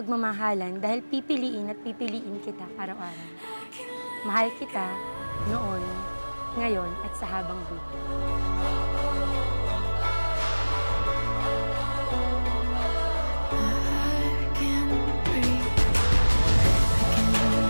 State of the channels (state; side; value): inverted; both; correlation -1.00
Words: dahil pipiliin at pipiliin kita araw-araw. Mahal kita noon, ngayon at sa habang buhay.